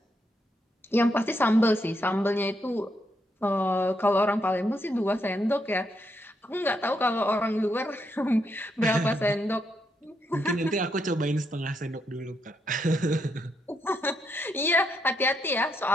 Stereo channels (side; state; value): both; normal; correlation 0.79